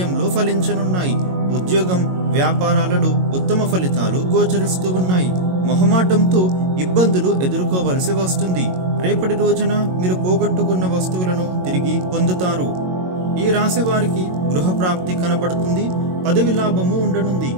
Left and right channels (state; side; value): late; left; 22 ms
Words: ఫలించనున్నాయి. ఉద్యోగం, వ్యాపారాలలో ఉత్తమ ఫలితాలు గోచరిస్తూ ఉన్నాయి. మొహమాటంతో ఇబ్బందులు ఎదుర్కోవలసి వస్తుంది. రేపటి రోజున మీరు పోగొట్టుకున్న వస్తువులను తిరిగి పొందుతారు. ఈ రాశి వారికి గృహప్రాప్తి కనబడుతుంది. పదవి లాభము ఉండనుంది.